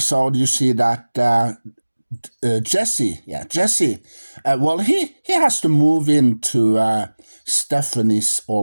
you see that Jesse, he has to move into Stephanie's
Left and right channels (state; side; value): inverted; both; correlation -1.00